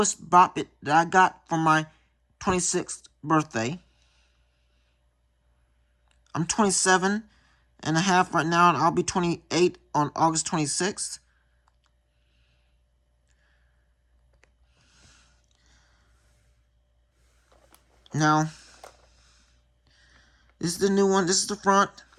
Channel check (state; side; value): identical; both; correlation 1.00